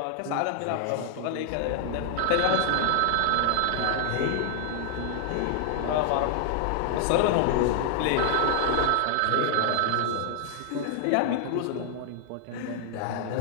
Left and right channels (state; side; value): different; both; correlation 0.00